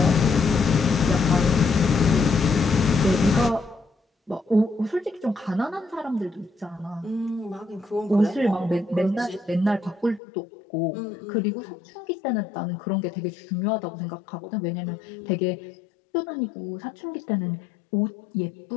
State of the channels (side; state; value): right; drops out; at 10.2 s